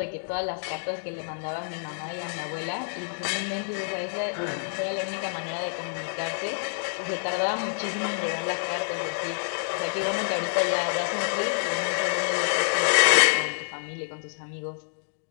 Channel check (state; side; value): silent; right; digital silence